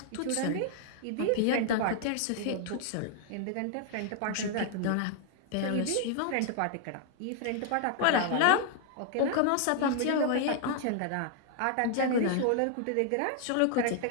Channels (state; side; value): different; both; correlation 0.00